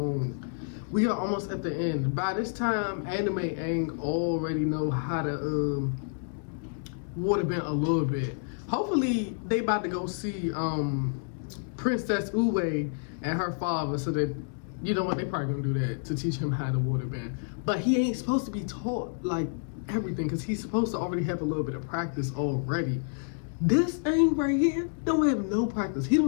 We are almost at the end. By this time, Anime Aang already know how to waterbend a little bit. Hopefully, they about to go see Princess Uwe and her father, so that, you know what, they probably gonna do that to teach him how to waterbend. But he ain't supposed to be taught like everything, because he's supposed to already have a little bit of practice already. This Aang right here don't have no practice. He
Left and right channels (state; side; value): silent; right; digital silence